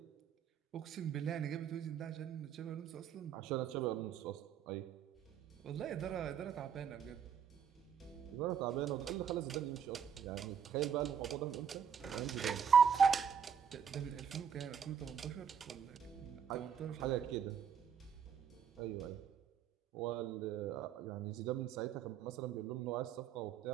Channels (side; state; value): left; quieter; 7.5 dB